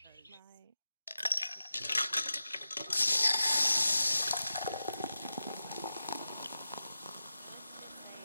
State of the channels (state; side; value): inverted; both; correlation -0.90